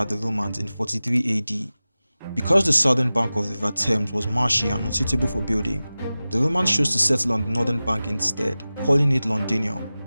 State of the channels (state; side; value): inverted; both; correlation -0.96